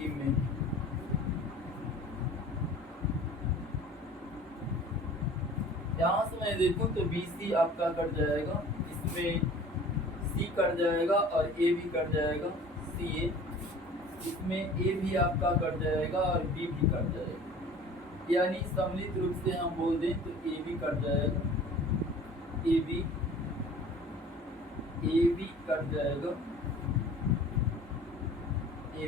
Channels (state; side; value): normal; both; correlation 0.46